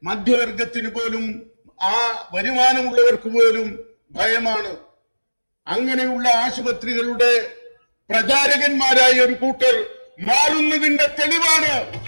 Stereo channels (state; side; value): inverted; both; correlation -1.00